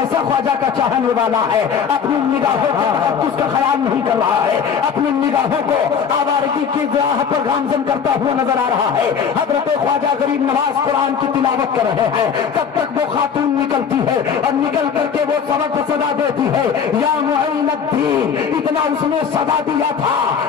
ख्वाजा का चाहने वाला है? अपनी निगाहों को उसका ख्याल नहीं कर रहा है, अपनी निगाहों को आवारगी की राह पर गामजन करता हुआ नजर आ रहा है। हजरत ख्वाजा गरीब नवाज कुरान की तिलावत कर रहे हैं। तब तक वो खातून निकलती है और निकल करके वो सबक सदा देती है, या मुअल्लिम, इतना उसने सदा दिया था।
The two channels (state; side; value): quieter; right; 6.9 dB